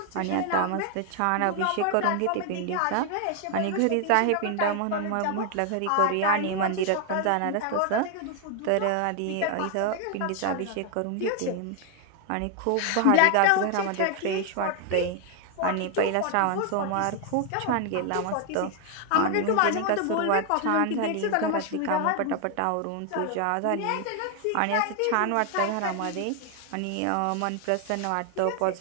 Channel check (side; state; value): both; different; correlation 0.00